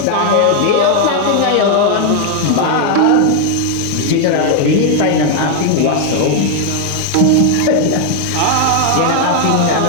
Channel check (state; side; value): different; both; correlation 0.00